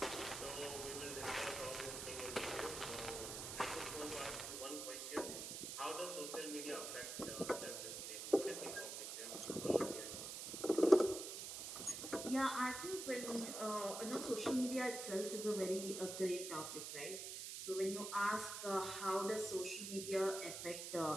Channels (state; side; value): noise; right; hiss, 6 dB below the sound